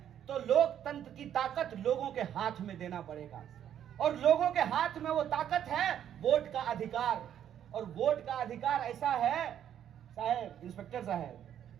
तो लोकतंत्र की ताकत लोगों के हाथ में देना पड़ेगा। और लोगों के हाथ में वो ताकत है वोट का अधिकार। और वोट का अधिकार ऐसा है, साहब इंस्पेक्टर साहब,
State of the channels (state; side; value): quieter; left; 10.0 dB